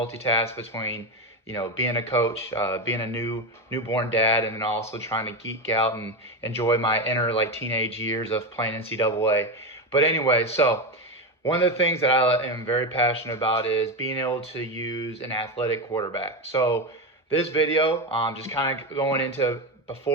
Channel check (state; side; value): normal; both; correlation 0.15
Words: between being a coach, being a newborn dad, and then also trying to geek out and enjoy my inner teenage years of playing NCAA. But anyway, so one of the things that I am very passionate about is being able to use an athletic quarterback. So this video, just kind of going into,